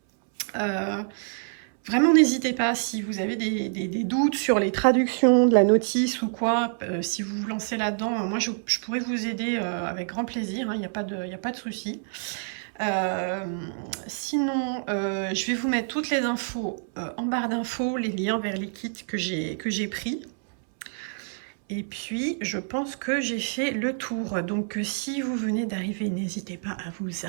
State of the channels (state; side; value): silent; left; 60 dB below the other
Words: Vraiment, n'hésitez pas si vous avez des doutes sur les traductions de la notice ou quoi, si vous vous lancez là-dedans, moi je pourrais vous aider avec grand plaisir, il n'y a pas de souci. Sinon, je vais vous mettre toutes les infos en barre d'infos, les liens vers les kits que j'ai pris. Et puis, je pense que j'ai fait le tour. Donc, si vous venez d'arriver, n'hésitez pas à vous